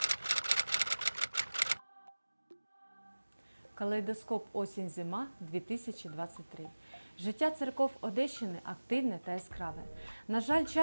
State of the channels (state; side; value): inverted; both; correlation -1.00